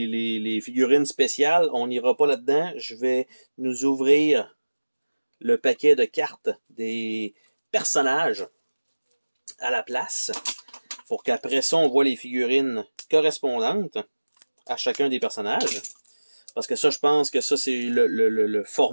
figurines spéciales. On n'ira pas là-dedans. Je vais nous ouvrir le paquet de cartes des personnages à la place pour qu'après ça, on voit les figurines correspondantes à chacun des personnages. Parce que ça, je pense que ça, c'est le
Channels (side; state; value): both; inverted; correlation -1.00